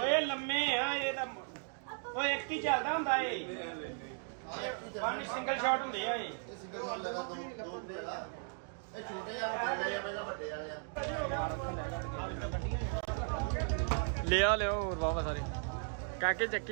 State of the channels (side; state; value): left; silent; 54 dB below the other